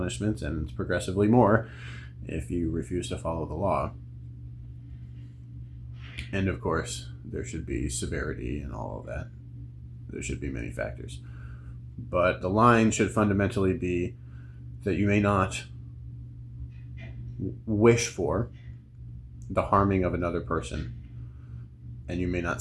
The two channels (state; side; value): identical; both; correlation 1.00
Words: and it's progressively more if you refuse to follow the law. And of course, there should be severity and all of that. There should be many factors. But the line should fundamentally be that you may not wish for the harming of another person, and you may